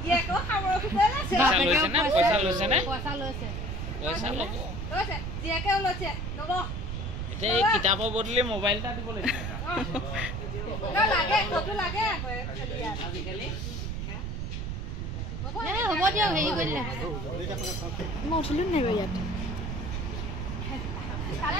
জীয়েকো খাবৰ খুঁজে লৈছে পইচা লৈছে নে পইচা লৈছে পইচা ল'ব লৈছে জীয়েকেও লৈছে ল'ব এতিয়া এই কিতাপৰ বদলি মোবাইল এটা দিব লাগিব লাগে কতো লাগে আজিকালি হ'ব দিয়ক হেৰি কৰিলে মই উঠিলো নাই বাৰু ইয়াত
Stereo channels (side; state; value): right; noise; rumble, 4 dB below the sound